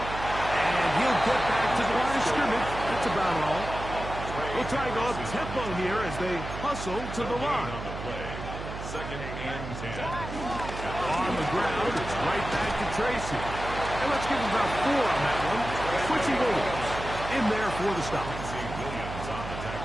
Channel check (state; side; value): noise; right; hum, 8 dB below the sound